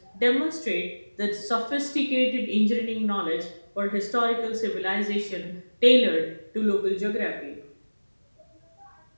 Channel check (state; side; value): inverted; both; correlation -1.00